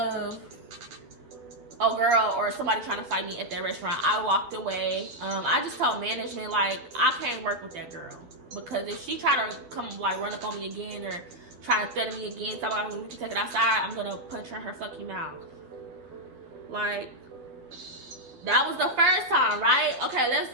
a girl or somebody trying to fight me at that restaurant. I walked away. I just told management, like, I can't work with that girl, because if she try to come like run up on me again or try to threaten me again, talking about we can take it outside, I'm gonna punch her in her fucking mouth. Like, that was the first time, right? Okay,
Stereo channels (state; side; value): late; left; 12 ms